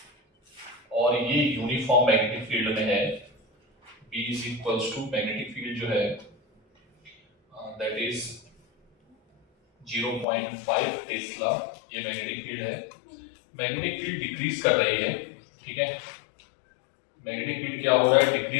और ये यूनिफॉर्म मैग्नेटिक फील्ड में है, B is equals to magnetic field जो है दैट इज 0.5 टेस्ला, ये मैग्नेटिक फील्ड है। मैग्नेटिक फील्ड डिक्रीज कर रही है, ठीक है। मैग्नेटिक फील्ड क्या हो रहा है,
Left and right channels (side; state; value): right; drops out; at 10.2 s